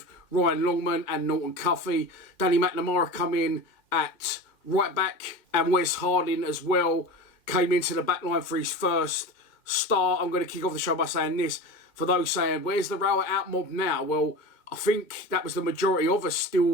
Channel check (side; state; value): right; late; 2.1 ms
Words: Ryan Longman and Norton Cuffey. Danny McNamara come in at right back, and Wes Harding as well came into the back line for his first start. I'm going to kick off the show by saying this. For those saying, where's the Rower out mob now? Well, I think that was the majority of us